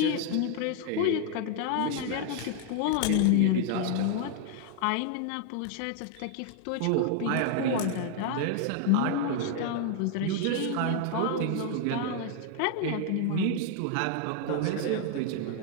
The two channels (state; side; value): different; both; correlation 0.01